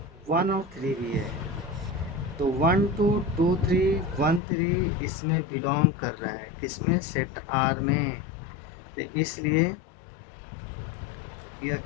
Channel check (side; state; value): right; drops out; at 4.4 s